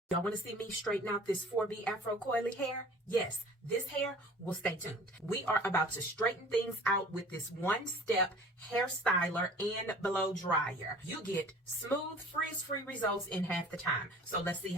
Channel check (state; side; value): normal; both; correlation 0.46